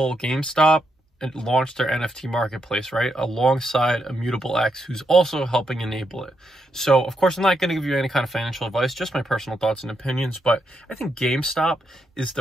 GameStop and launch their NFT marketplace, right? Alongside Immutable X, who's also helping enable it. So, of course, I'm not going to give you any kind of financial advice, just my personal thoughts and opinions, but I think GameStop is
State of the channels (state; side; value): normal; both; correlation 0.81